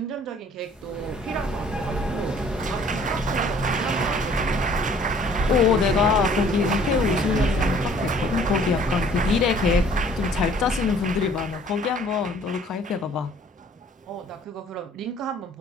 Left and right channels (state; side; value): normal; both; correlation 0.56